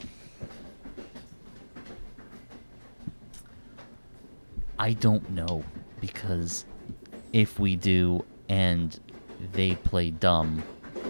I don't know, because if we do and they play dumb,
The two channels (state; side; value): inverted; both; correlation -1.00